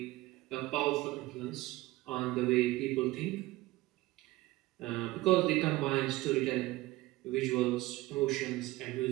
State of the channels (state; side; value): quieter; left; 18.8 dB